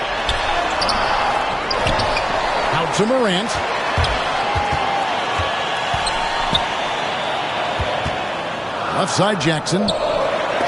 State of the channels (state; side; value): identical; both; correlation 1.00